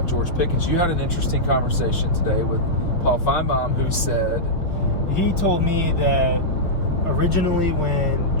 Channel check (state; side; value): late; right; 6.3 ms